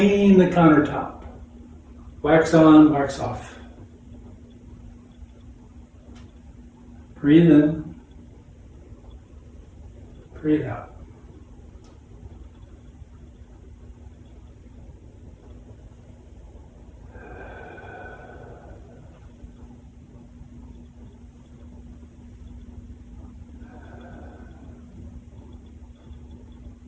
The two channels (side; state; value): both; identical; correlation 1.00